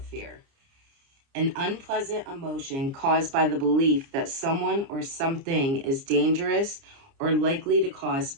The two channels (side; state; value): left; late; 29 ms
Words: fear: an unpleasant emotion caused by the belief that someone or something is dangerous or likely to cause